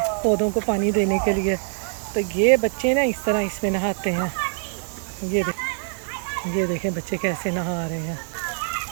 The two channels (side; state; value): left; silent; digital silence